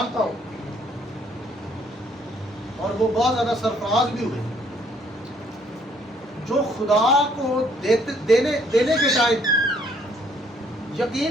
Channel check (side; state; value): both; normal; correlation 0.65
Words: हूँ और वो बहुत ज्यादा सरफराज भी हुए, जो खुदा को देने के टाइम, यकीन